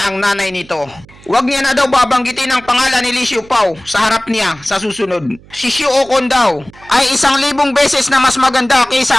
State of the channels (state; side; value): noise; right; hum, 24 dB below the sound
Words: ang nanay nito. Wag niya na daw babanggitin ang pangalan ni Lee Xiaopao sa harap niya sa susunod. Si Shukon daw ay 1,000 beses na mas maganda